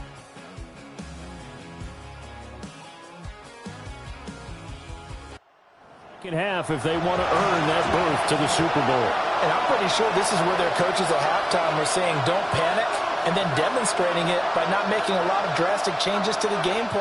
Half if they want to earn that berth to the Super Bowl. And I'm pretty sure this is where their coaches at halftime were saying don't panic and then demonstrating it by not making a lot of drastic changes to the game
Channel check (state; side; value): identical; both; correlation 1.00